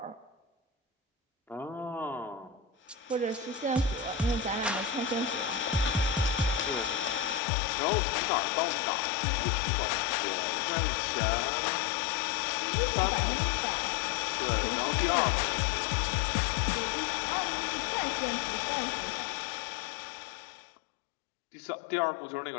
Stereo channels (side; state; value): right; drops out; at 7.4 s